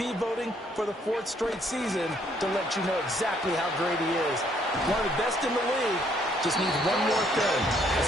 voting for the 4th straight season to let you know exactly how great he is. One of the best in the league, just needs one more thing, a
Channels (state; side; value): normal; both; correlation 0.67